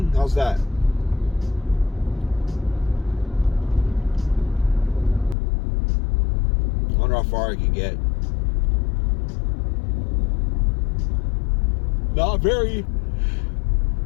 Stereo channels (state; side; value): drops out; right; at 5.4 s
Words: How's that? I wonder how far I can get. Not very.